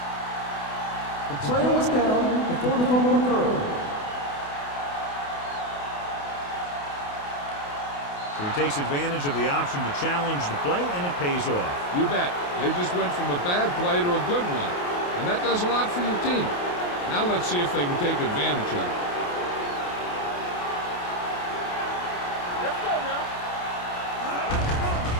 The player was down before the fumble occurred. So he takes advantage of the option to challenge the play, and it pays off. You bet. They just went from a bad play to a good one, and that does a lot for your team. Now let's see if they can take advantage of it. Let's go now.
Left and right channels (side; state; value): right; late; 28 ms